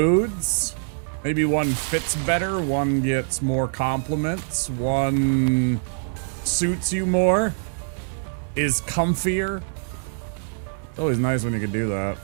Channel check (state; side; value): silent; left; digital silence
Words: Maybe one fits better, one gets more compliments, one suits you more, is comfier. It's always nice when you can do that.